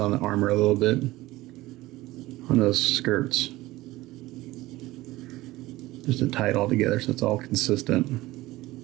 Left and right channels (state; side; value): quieter; left; 18.3 dB